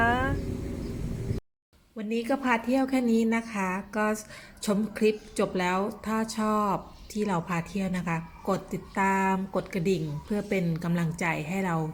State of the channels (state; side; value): identical; both; correlation 1.00